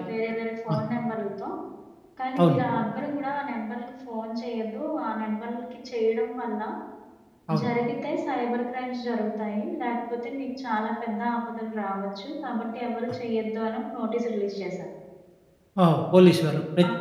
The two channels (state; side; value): identical; both; correlation 1.00